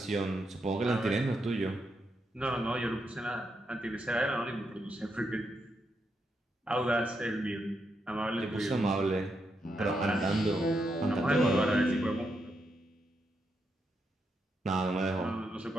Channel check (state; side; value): normal; both; correlation 0.82